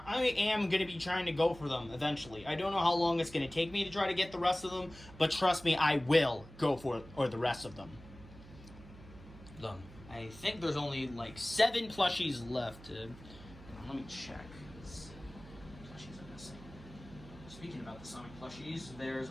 gonna be trying to go for them eventually. I don't know how long it's gonna take me to try to get the rest of them, but trust me, I will go for the rest of them. I think there's only like 7 plushies left. Let me check. Plushies are missing. Speaking about the Sonic plushies, there's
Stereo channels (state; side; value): noise; right; hum, 18 dB below the sound